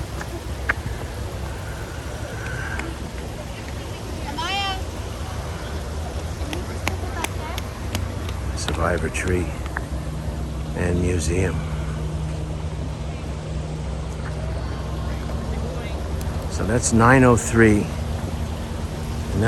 Survivor tree and museum. So that's 903 and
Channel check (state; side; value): identical; both; correlation 1.00